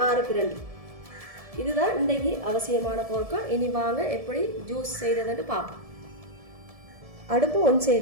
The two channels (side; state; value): left; late; 1.7 ms